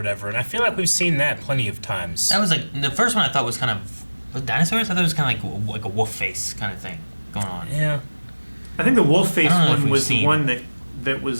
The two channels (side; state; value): both; inverted; correlation -1.00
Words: and I feel like we've seen that plenty of times. That was like the first one. I thought was kind of with dinosaurs. I thought it was kind of like a wolf face kind of thing going on. Yeah. I think the wolf face I don't know if one we've was the seen- one that